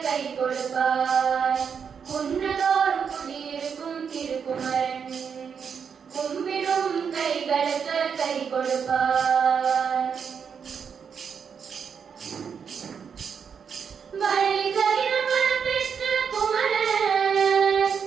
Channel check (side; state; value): left; quieter; 6.8 dB